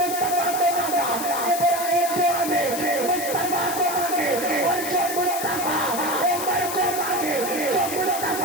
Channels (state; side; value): noise; left; hiss, 6 dB below the sound